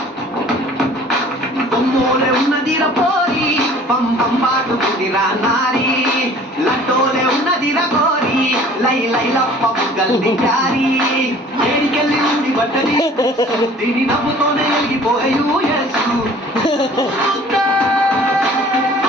బొమ్మోలే ఉన్నదిరా పోరి పం పం పాటుకుందిరా నారి లడ్డోలే ఉన్నదిరా గోరి లై లై లప్ప బుగ్గల్ది ప్యారీ ఏడికెళ్ళి ఉంది బట్టది దీని నవ్వుతోనే ఎలిగిపోయూ యేసు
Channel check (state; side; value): normal; both; correlation 0.50